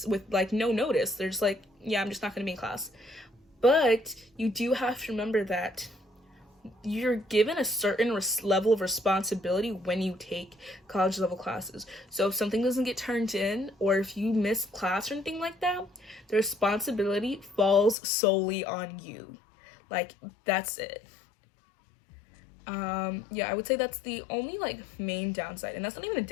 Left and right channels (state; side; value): drops out; right; at 17.9 s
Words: with like no notice. They're just like, yeah, I'm just not going to be in class. But you do have to remember that you're given a certain level of responsibility when you take college level classes. So if something doesn't get turned in, or if you miss class or anything like that, the responsibility falls solely on you. Like, that's it. Yeah, I would say that's the only like main downside, and that's not even a